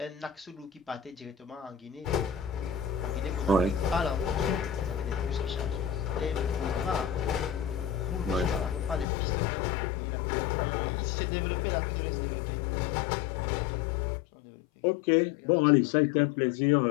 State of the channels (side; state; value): right; drops out; at 9.1 s